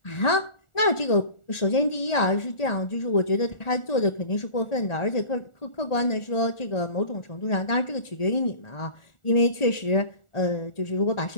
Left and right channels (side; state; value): right; late; 1.4 ms